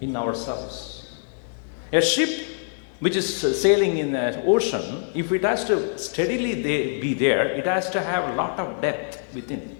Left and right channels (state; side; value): silent; right; 62 dB below the other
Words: in ourselves. A ship which is sailing in the ocean, if it has to steadily be there, it has to have a lot of depth within.